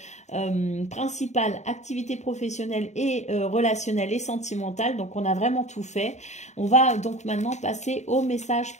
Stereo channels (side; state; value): right; late; 0.34 ms